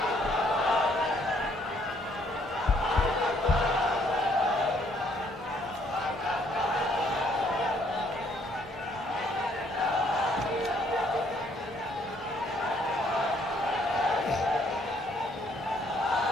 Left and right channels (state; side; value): normal; both; correlation 0.66